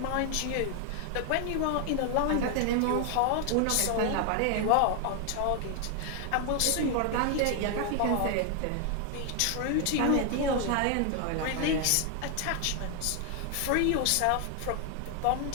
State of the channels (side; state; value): both; different; correlation 0.00